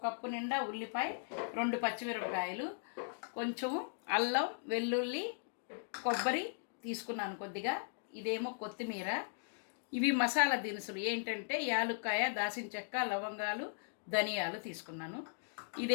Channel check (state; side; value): silent; right; digital silence